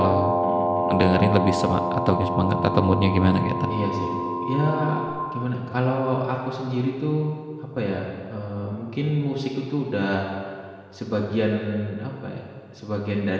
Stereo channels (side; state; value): both; identical; correlation 1.00